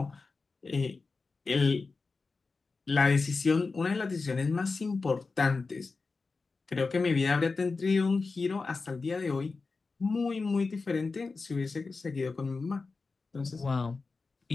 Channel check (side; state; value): right; quieter; 4.1 dB